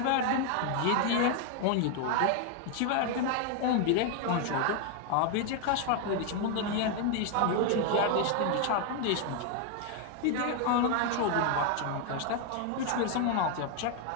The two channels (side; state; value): both; different; correlation 0.01